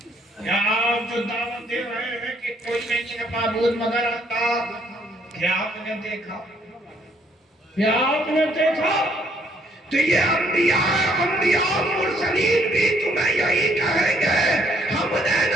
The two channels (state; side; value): normal; both; correlation 0.67